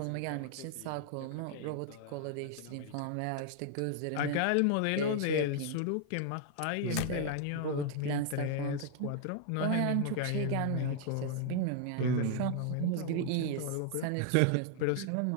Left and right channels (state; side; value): different; both; correlation 0.00